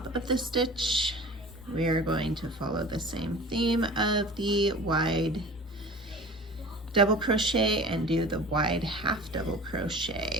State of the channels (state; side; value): normal; both; correlation 0.40